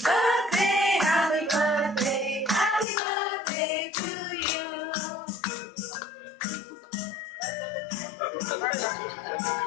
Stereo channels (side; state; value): right; drops out; at 2.9 s